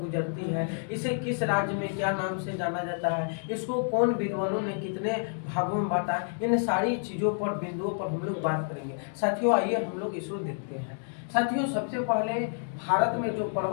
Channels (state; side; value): silent; right; digital silence